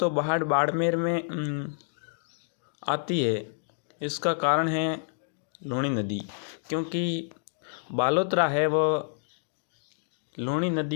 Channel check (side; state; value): right; silent; digital silence